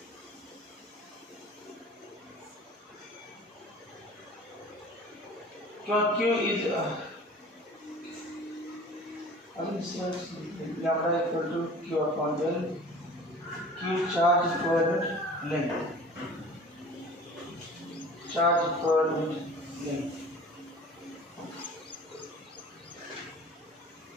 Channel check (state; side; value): normal; both; correlation 0.43